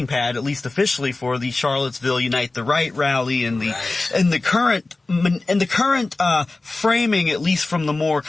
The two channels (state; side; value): quieter; right; 3.2 dB